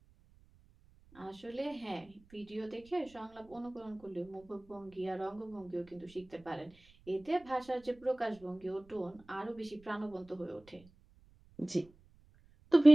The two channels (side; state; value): right; noise; rumble, 27 dB below the sound